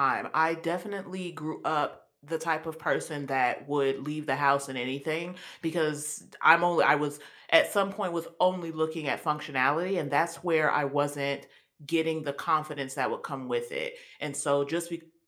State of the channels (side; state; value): both; identical; correlation 1.00